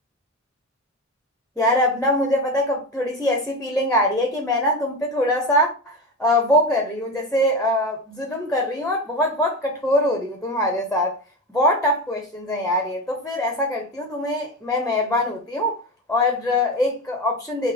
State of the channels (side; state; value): both; normal; correlation 0.22